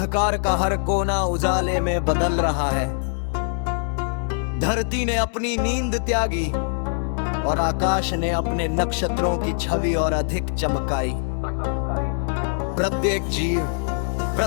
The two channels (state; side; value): silent; right; 63 dB below the other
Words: का हर कोना उजाले में बदल रहा है। धरती ने अपनी नींद त्यागी और आकाश ने अपने नक्षत्रों की छवि और अधिक चमकाई। प्रत्येक जीव,